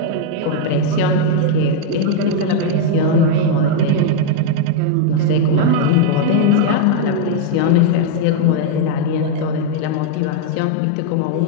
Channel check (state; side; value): different; both; correlation 0.00